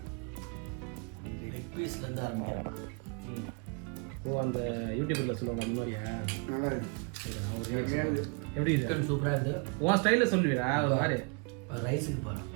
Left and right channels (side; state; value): left; quieter; 35.4 dB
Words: லெக் பீஸ்லேருந்து ஆரம்பிக்கிறேன். ஓ, அந்த யூடியூப்ல சொல்லுவாங்க அந்த மாதிரியா? எப்படி சிக்கன் சூப்பராக இருக்குது. உன் ஸ்டைலில் சொல்லுவீடா ஒரு மாதிரி. ரைஸுக்கு போகிறேன்.